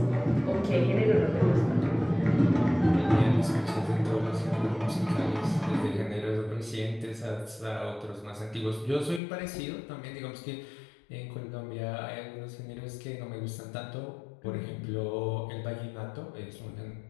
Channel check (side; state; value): right; drops out; at 9.2 s